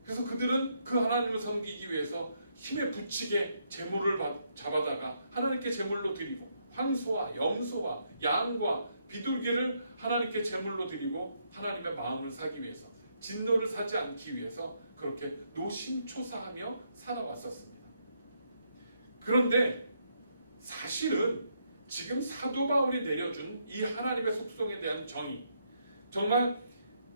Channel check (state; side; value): inverted; both; correlation -0.76